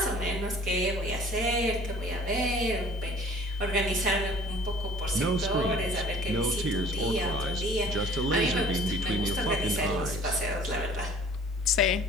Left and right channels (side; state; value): both; normal; correlation 0.50